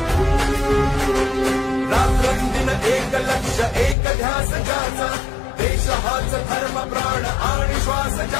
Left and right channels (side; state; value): right; drops out; at 4.0 s